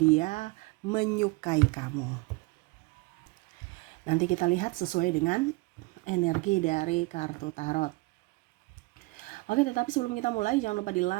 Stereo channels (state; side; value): quieter; left; 23.9 dB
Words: menyukai kamu? Nanti kita lihat sesuai dengan energi dari kartu tarot. Oke, tetapi sebelum kita mulai, jangan lupa di